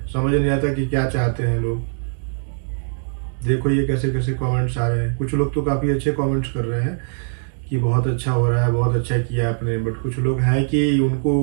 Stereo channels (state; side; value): silent; left; digital silence